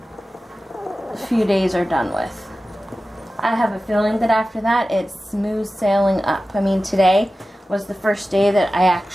few days are done with. I have a feeling that after that, it's smooth sailing up. I mean, today was the first day that I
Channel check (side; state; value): both; normal; correlation 0.95